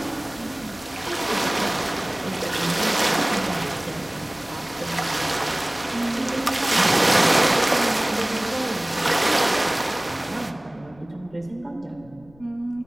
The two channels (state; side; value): noise; left; rumble, 25 dB below the sound